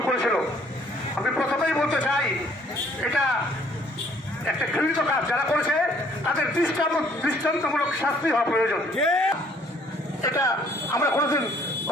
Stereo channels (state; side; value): normal; both; correlation 0.61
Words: করেছিল। আমি প্রথমেই বলতে চাই এটা একটা ঘৃণিত কাজ যারা করেছে তাদের দৃষ্টান্তমূলক শাস্তি হওয়া প্রয়োজন। এটা আমরা কোনোদিন